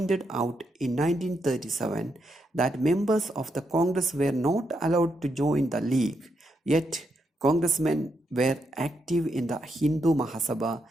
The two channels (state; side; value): normal; both; correlation 0.81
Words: in 1937 that members of the Congress were not allowed to join the League, yet congressmen were active in the Hindu Mahasabha,